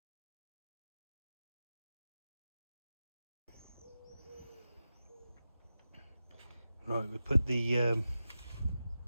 Right, we put the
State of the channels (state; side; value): inverted; both; correlation -0.92